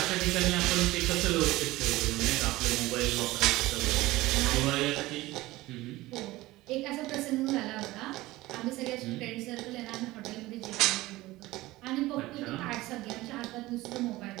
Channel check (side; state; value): left; quieter; 18.6 dB